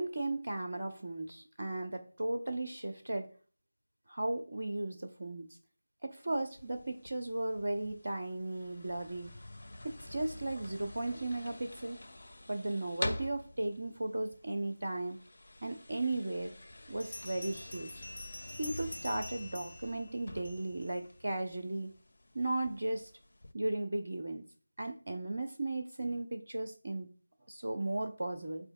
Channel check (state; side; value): inverted; both; correlation -0.96